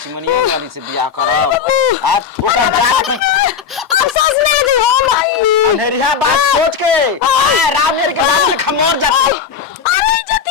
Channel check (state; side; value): quieter; right; 6.9 dB